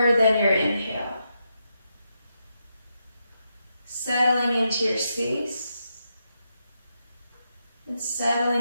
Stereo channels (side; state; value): both; inverted; correlation -0.84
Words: than your inhale. Settling into your space and